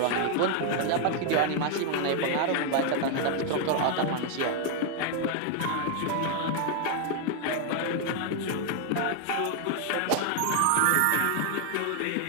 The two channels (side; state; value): both; different; correlation 0.00